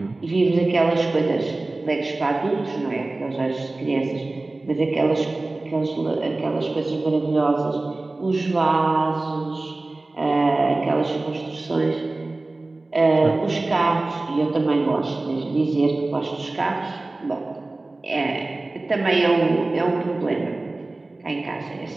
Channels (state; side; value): quieter; left; 3.1 dB